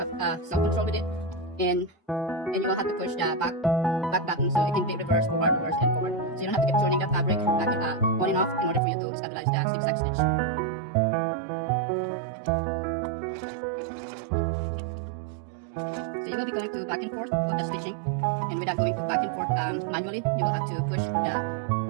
self-control with it, and you will have to push the back button so it can be reverse, forward, and forward. So you don't have to keep turning the fabric back and on and off in order for you to stabilize the zigzag stitch. So you will be going to back and forth with the stitching, and without going to back and forth manually, you will have to push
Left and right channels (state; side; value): drops out; left; at 8.8 s